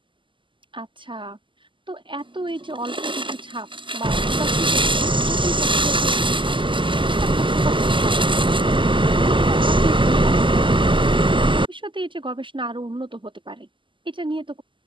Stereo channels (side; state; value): left; late; 0.24 ms